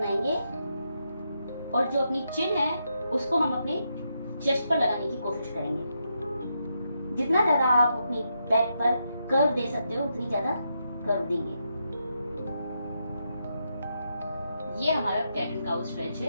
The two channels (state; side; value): inverted; both; correlation -0.82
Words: और जो अपनी चिन है उसको हम अपने चेस्ट पर लगाने की कोशिश करेंगे। जितना ज्यादा आप अपनी बैक पर कर्व दे सकते हो उतनी ज्यादा कर्व देंगे। ये हमारा कैट एंड काउ स्ट्रेच